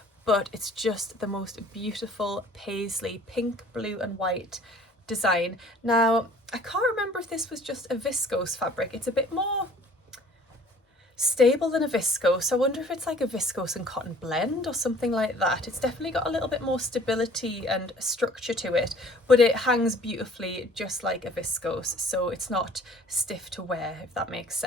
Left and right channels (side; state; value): both; normal; correlation 0.53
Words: but it's just the most beautiful paisley, pink, blue and white design. Now I can't remember if this was just a viscose fabric. It's a bit more stable than a viscose. I wonder if it's like a viscose and cotton blend or something like that. It's definitely got a little bit more stability and structure to it, but it hangs beautifully just like a viscose, so it's not stiff to wear, if that makes